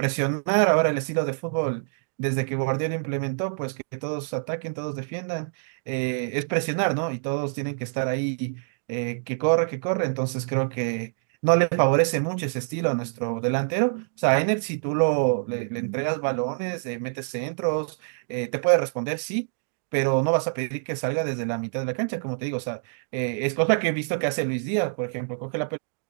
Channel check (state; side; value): silent; left; digital silence